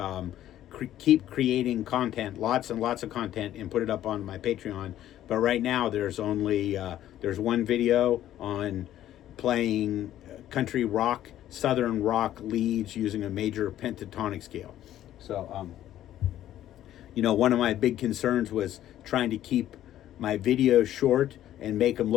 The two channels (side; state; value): right; quieter; 12.5 dB